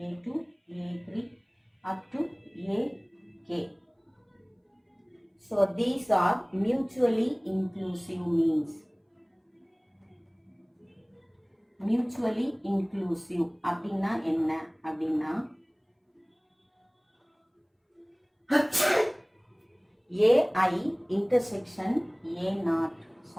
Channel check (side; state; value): both; identical; correlation 1.00